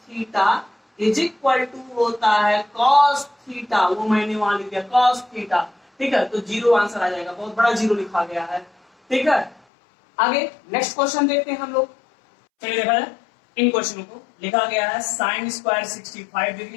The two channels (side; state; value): right; drops out; at 9.6 s